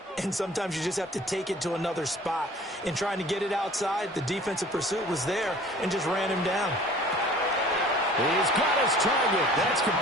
and sometimes you just have to take it to another spot. In trying to get it outside, the defensive pursuit was there and just ran him down. He's got his target. That's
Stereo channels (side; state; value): both; normal; correlation 0.48